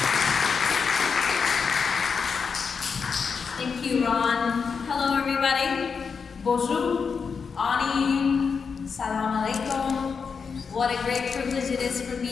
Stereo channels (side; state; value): right; quieter; 5.7 dB